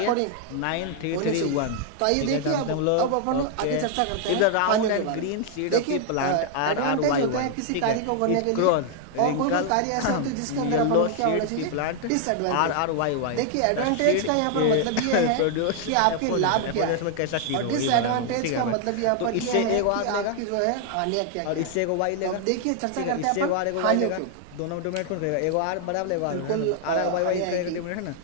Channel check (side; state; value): both; different; correlation 0.00